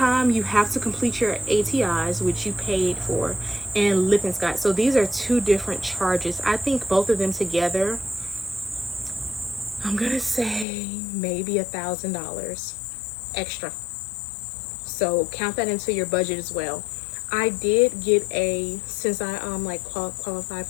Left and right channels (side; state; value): right; drops out; at 10.7 s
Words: you have to complete your ATIs, which you paid for, and Lippincott. So these are 2 different charges. I think both of them together, I'm gonna say maybe $1,000 extra. So count that into your budget as well. I did get since I qualified